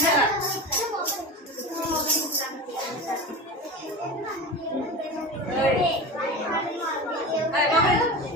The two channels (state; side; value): normal; both; correlation 0.29